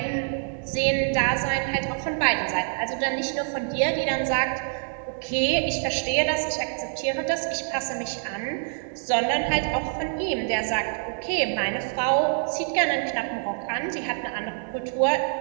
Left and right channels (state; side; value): silent; left; 61 dB below the other